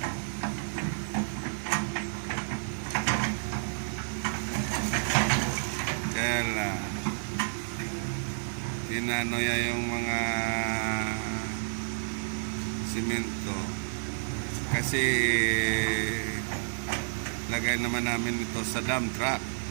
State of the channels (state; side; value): silent; left; digital silence